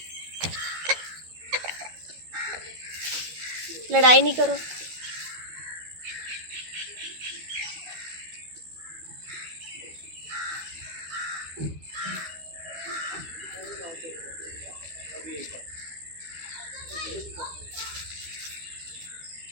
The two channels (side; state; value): left; late; 13 ms